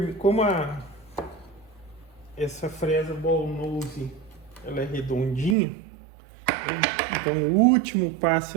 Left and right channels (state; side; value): drops out; left; at 5.6 s